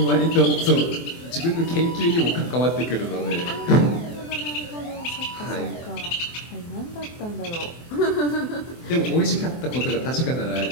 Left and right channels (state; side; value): late; right; 24 ms